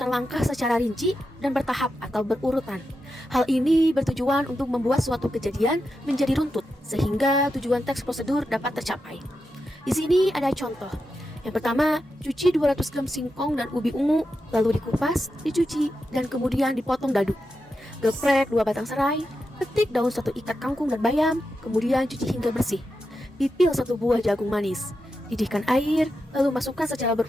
langkah secara rinci dan bertahap atau berurutan. Hal ini bertujuan untuk membuat suatu kejadian menjadi runtut, sehingga tujuan teks prosedur dapat tercapai. Di sini ada contoh. Yang pertama, cuci 200 gram singkong dan ubi ungu, lalu dikupas, dicuci, dan kemudian dipotong dadu. Geprek 2 batang serai, petik daun 1 ikat kangkung dan bayam, kemudian cuci hingga bersih. Pipil 1 buah jagung manis. Didihkan air, lalu masukkan secara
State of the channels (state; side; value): normal; both; correlation 0.88